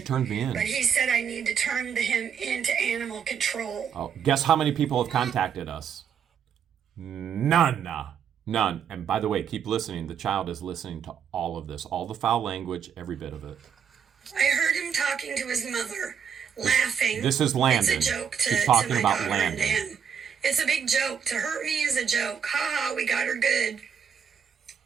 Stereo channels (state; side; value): quieter; left; 7.6 dB